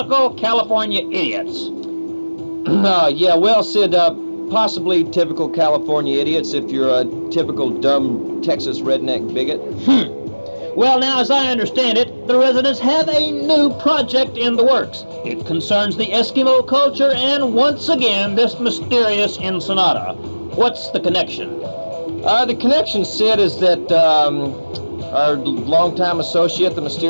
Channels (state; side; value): inverted; both; correlation -1.00